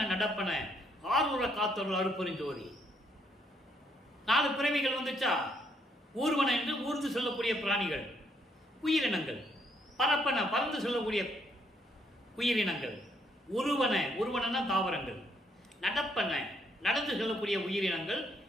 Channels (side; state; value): both; normal; correlation 0.71